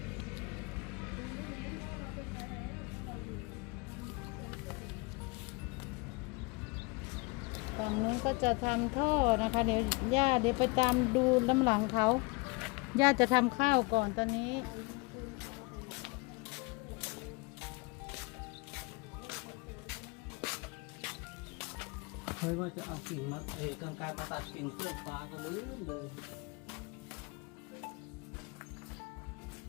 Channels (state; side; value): quieter; right; 27.2 dB